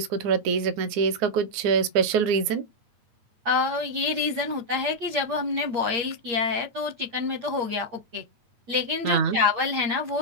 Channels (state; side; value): late; left; 8.6 ms